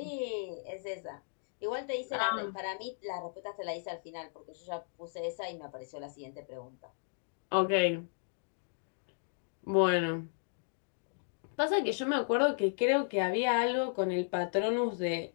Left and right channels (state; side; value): silent; right; digital silence